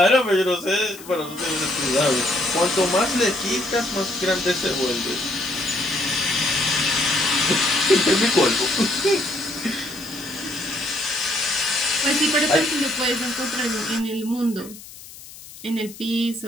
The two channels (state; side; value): noise; left; hiss, 17 dB below the sound